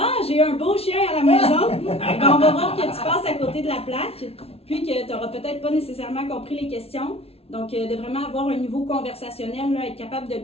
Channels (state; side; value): late; right; 0.29 ms